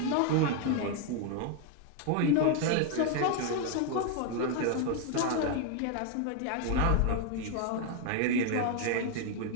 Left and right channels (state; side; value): different; both; correlation 0.01